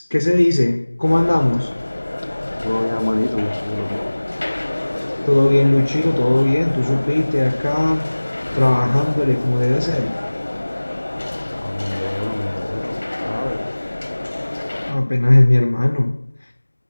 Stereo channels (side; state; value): both; inverted; correlation -1.00